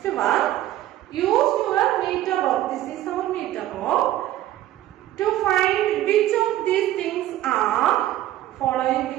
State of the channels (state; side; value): quieter; left; 13.8 dB